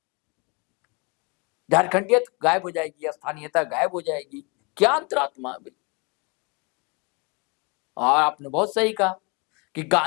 झारखंडियत गायब हो जाएगी, स्थानीयता गायब हो जाएगी, क्या अंतरात्मा अभी। और आपने बहुत सही कहा कि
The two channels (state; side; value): quieter; right; 30.3 dB